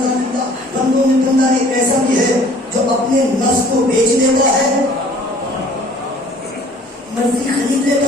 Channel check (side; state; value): both; normal; correlation 0.52